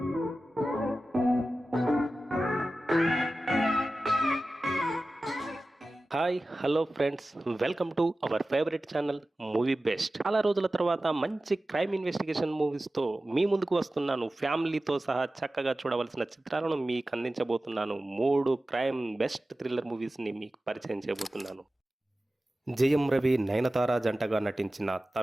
hello friends, welcome to our favourite channel movie best. చాలా రోజుల తర్వాత మంచి క్రైమ్ ఇన్వెస్టిగేషన్ మూవీస్తో మీ ముందుకు వస్తున్నాను. ఫ్యామిలీతో సహా చక్కగా చూడవలసిన చిత్రాలను మీకు అందించబోతున్నాను. 3 క్రైమ్ బెస్ట్ థ్రిల్లర్ మూవీస్ని మీకు పరిచయం చేయబోతున్నాను. జయం రవి, నయనతార జంటగా నటించిన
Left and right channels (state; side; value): normal; both; correlation 0.95